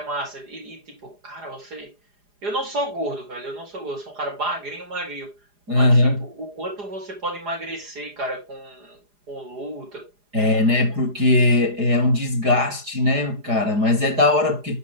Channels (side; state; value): left; late; 4.9 ms